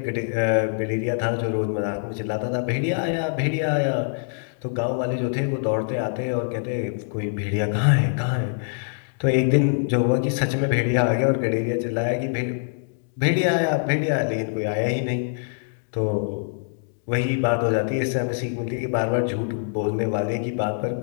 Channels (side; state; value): right; silent; digital silence